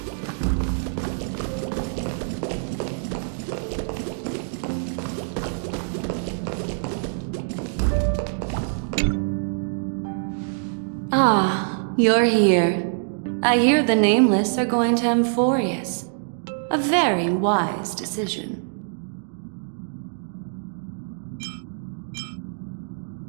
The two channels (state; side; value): silent; left; digital silence